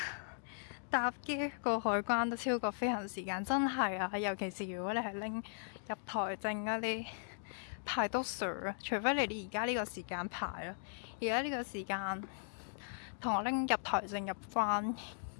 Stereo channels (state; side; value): silent; right; digital silence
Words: 搭機過海關都超過飛行時間，真係啊！尤其是如果你係拎入台證嗰啲，排到水啊！除非你而家呢個時間排咯，而家呢個時間同我拎入台證入關，